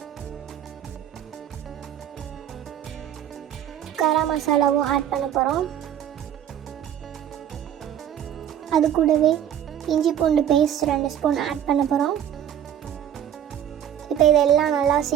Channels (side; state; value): left; quieter; 10.1 dB